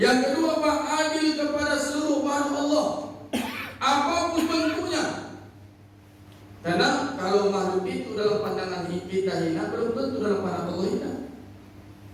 Yang kedua Pak, adil kepada seluruh makhluk Allah. Apapun bentuknya. Karena kalau makhluk itu dalam pandangan kita hina, belum tentu dalam pandangan Allah hina.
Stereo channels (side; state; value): both; identical; correlation 1.00